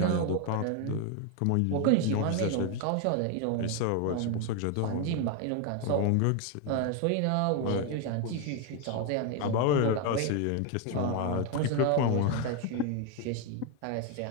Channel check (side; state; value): both; different; correlation 0.01